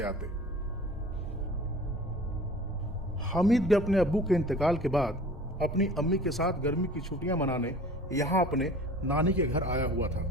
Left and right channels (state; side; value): normal; both; correlation 0.44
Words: आते। हामिद भी अपने अब्बू के इंतकाल के बाद अपनी अम्मी के साथ गर्मी की छुट्टियां मनाने यहाँ अपने नानी के घर आया हुआ था।